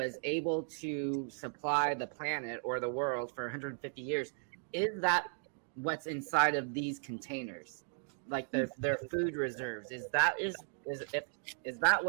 able to supply the planet or the world for 150 years, is that what's inside of these containers? Like their food reserves. Is that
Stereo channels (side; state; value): left; silent; 54 dB below the other